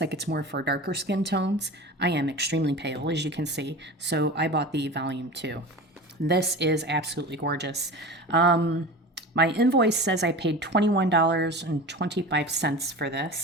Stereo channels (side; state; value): both; normal; correlation 0.33